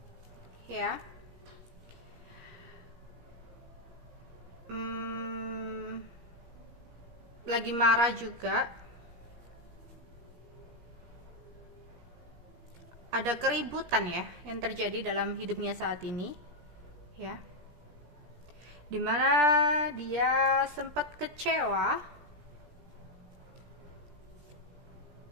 ya. Lagi marah juga. Ada keributan ya yang terjadi dalam hidupnya saat ini, ya. Dimana dia sempat kecewa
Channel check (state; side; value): late; left; 17 ms